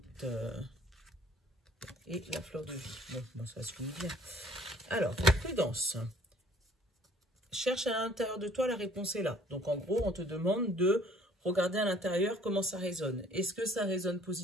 Et la fleur de vie. Bon, ça se finit bien. Alors, prudence. Cherche à l'intérieur de toi, la réponse est là. Donc, en gros, on te demande de regarder à l'intérieur comment ça résonne. Est-ce que ça résonne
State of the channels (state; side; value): normal; both; correlation 0.56